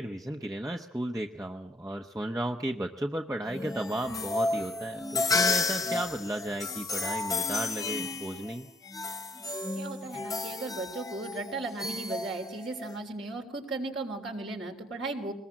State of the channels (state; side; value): normal; both; correlation 0.66